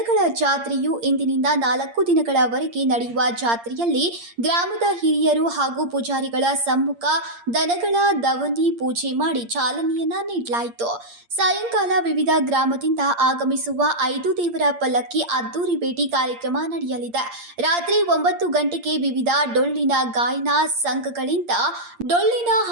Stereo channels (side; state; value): left; late; 8.6 ms